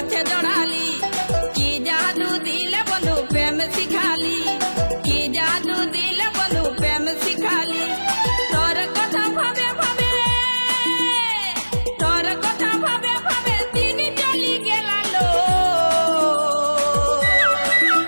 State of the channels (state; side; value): inverted; both; correlation -1.00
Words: জড়ালি কি জাদু দিলে বন্ধু প্রেম শিখালি কি জাদু দিলে বন্ধু প্রেম শিখালি তোর কথা ভাবে ভাবে তোর কথা ভাবে ভাবে দিন চলি গেলালো